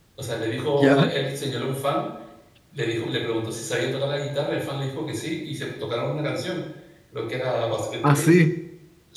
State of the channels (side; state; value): both; identical; correlation 1.00